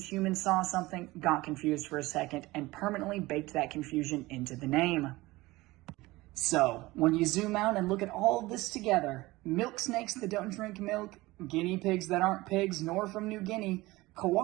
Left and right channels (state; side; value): quieter; left; 20.0 dB